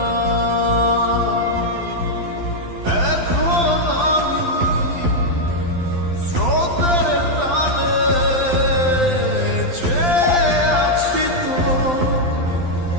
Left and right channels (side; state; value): left; late; 12 ms